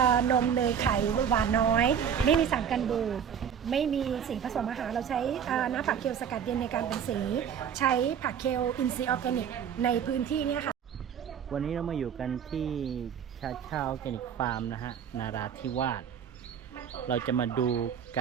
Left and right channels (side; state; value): left; quieter; 8.1 dB